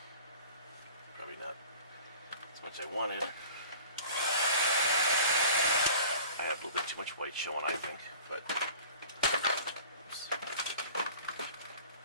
Probably not as much as I wanted. I have a little bit too much white showing, I think, but oops.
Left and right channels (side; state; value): both; inverted; correlation -0.43